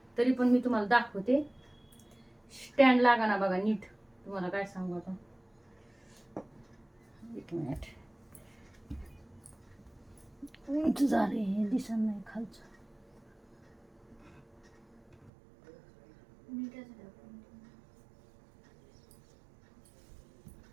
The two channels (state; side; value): drops out; left; at 15.3 s